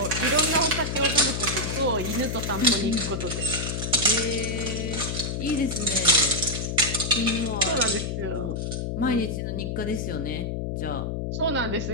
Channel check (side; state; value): left; noise; hum, 3 dB below the sound